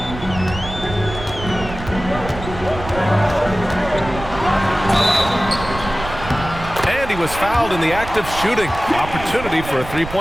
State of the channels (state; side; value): noise; right; rumble, 11 dB below the sound